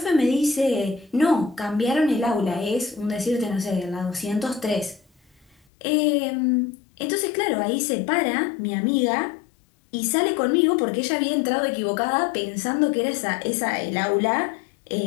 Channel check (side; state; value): right; drops out; at 5.6 s